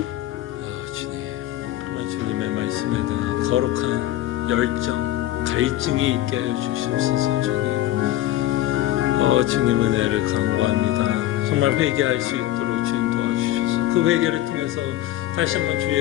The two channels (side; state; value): right; quieter; 14.2 dB